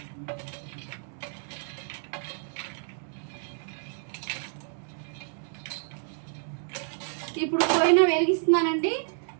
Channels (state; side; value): silent; left; 56 dB below the other